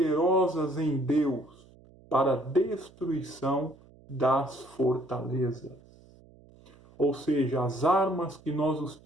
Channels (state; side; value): noise; right; hum, 26 dB below the sound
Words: em Deus para a destruição das fortalezas. Ou seja, as armas que